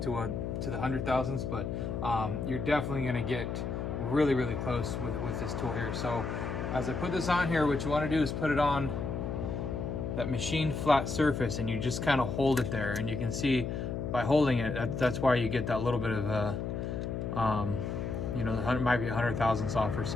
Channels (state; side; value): noise; left; hum, 3 dB below the sound